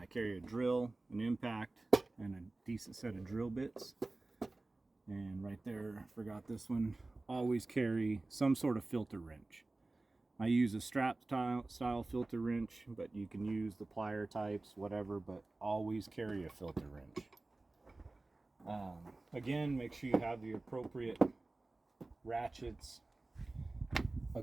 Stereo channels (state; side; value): quieter; left; 3.1 dB